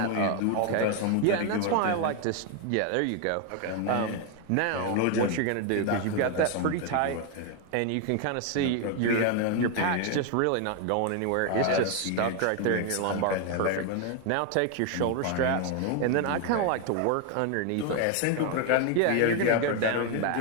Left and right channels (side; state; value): both; different; correlation 0.01